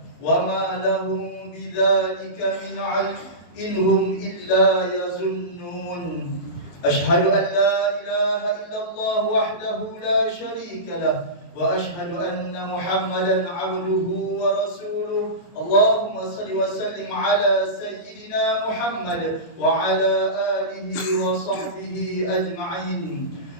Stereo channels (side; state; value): right; late; 23 ms